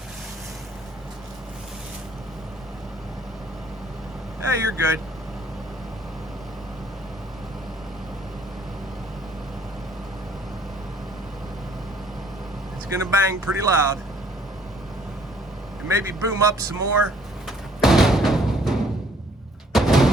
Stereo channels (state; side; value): normal; both; correlation 0.61